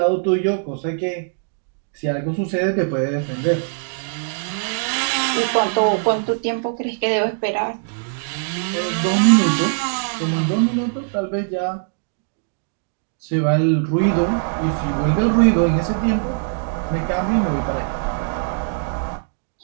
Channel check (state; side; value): silent; left; digital silence